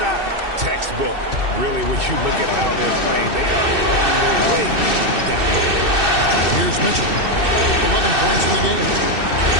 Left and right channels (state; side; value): late; left; 2.6 ms